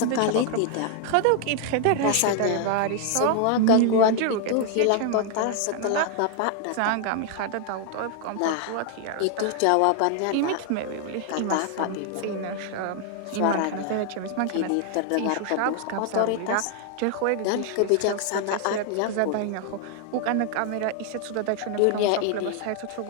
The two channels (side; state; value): both; different; correlation 0.00